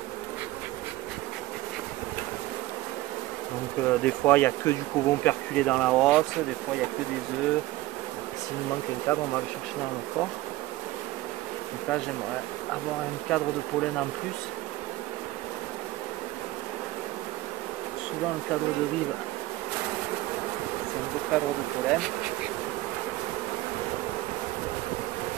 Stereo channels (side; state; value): left; quieter; 17.7 dB